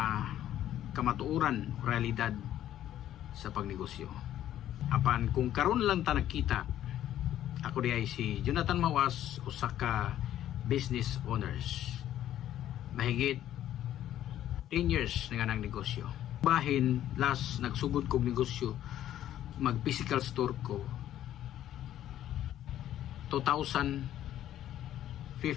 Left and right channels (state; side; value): quieter; right; 12.0 dB